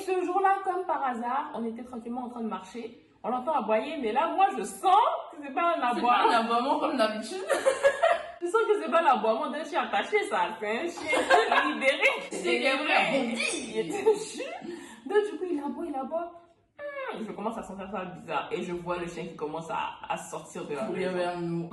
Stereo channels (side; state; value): both; identical; correlation 1.00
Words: jour-là, comme par hasard, on était tranquillement en train de marcher. On l'entend aboyer, mais là, moi, je sens que c'est pas un C'est aboiement. pas un aboiement comme d'habitude. Je sens que c'est pas l'aboiement d'un chien attaché, ça. C'est un chien libéré. C'est qu'il est vrai, Il était jus. Donc, du coup, il aboie. je commence à sentir ça bizarre. Et je vois le chien qui commence à sortir de la Courir maison. vers nous.